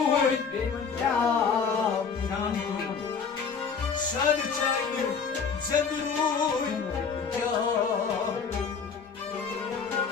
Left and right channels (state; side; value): quieter; right; 5.8 dB